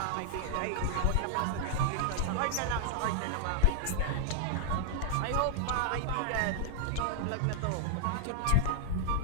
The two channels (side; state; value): both; different; correlation -0.01